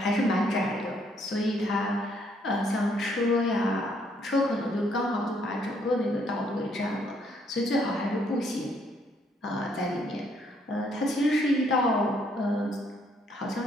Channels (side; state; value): both; normal; correlation 0.69